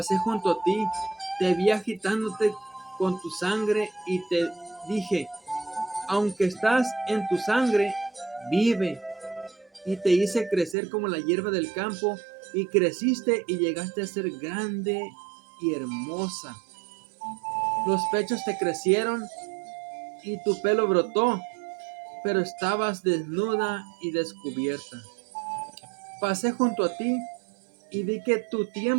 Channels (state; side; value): drops out; left; at 10.8 s